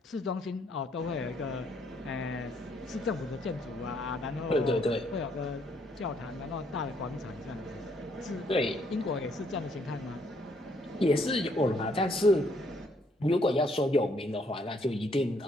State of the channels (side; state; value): both; normal; correlation 0.69